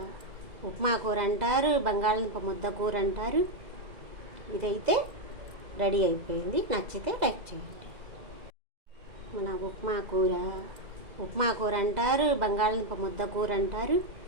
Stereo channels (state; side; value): late; left; 2.0 ms